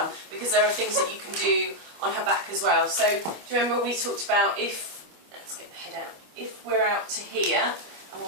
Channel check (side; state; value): left; late; 25 ms